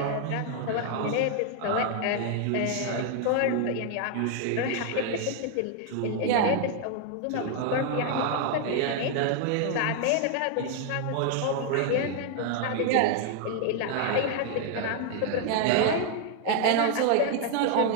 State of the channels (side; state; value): both; different; correlation 0.00